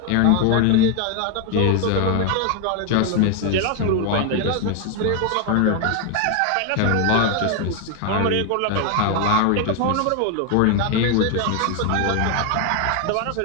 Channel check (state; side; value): different; both; correlation 0.01